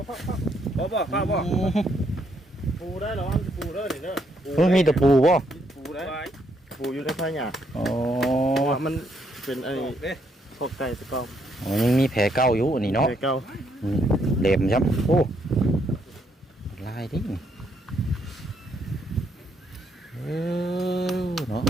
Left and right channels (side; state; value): both; normal; correlation 0.73